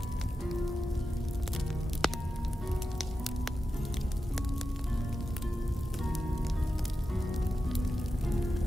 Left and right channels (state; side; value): normal; both; correlation 0.91